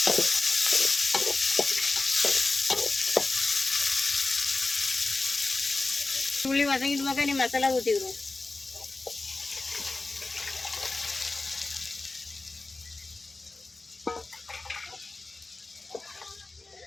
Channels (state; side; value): quieter; right; 3.3 dB